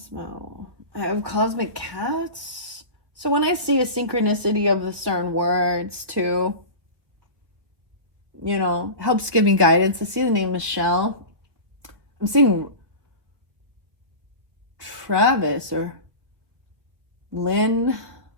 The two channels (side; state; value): left; late; 1.3 ms